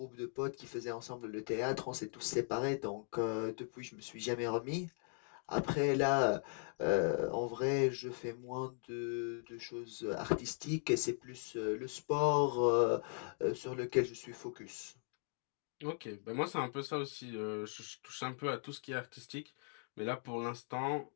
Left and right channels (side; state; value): right; silent; 52 dB below the other